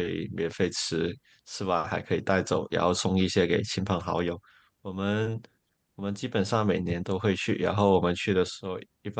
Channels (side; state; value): both; identical; correlation 1.00